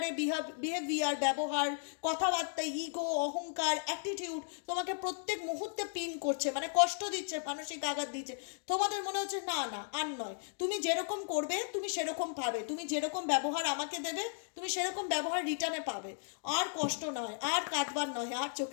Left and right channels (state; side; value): silent; right; digital silence